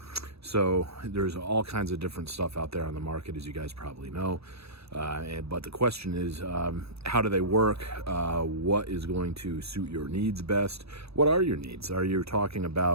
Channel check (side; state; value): left; late; 0.78 ms